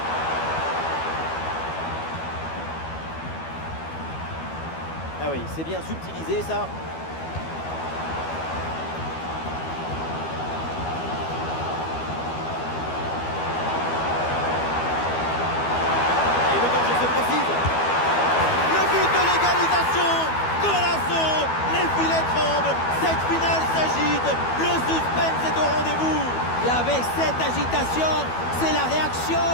Ah oui, c'est bien subtilisé ça. Et le danger se précise. Le but de l'égalisation. Golasso. Les filets tremblent. Cette finale s'agite. Le suspense est au rendez-vous. Et avec cette agitation, c'est la réaction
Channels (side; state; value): right; late; 12 ms